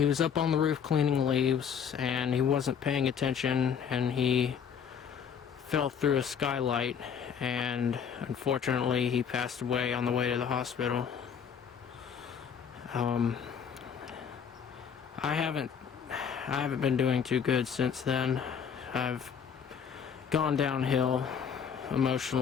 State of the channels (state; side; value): quieter; right; 7.3 dB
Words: was up on the roof cleaning leaves, and he wasn't paying attention, and he fell through a skylight, and unfortunately he passed away on the way to the hospital. I haven't been doing too good since then. I've gone downhill